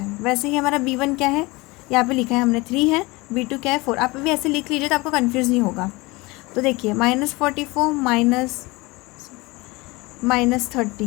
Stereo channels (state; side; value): quieter; right; 23.1 dB